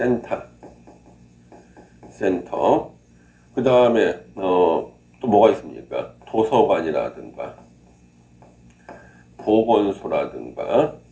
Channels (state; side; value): identical; both; correlation 1.00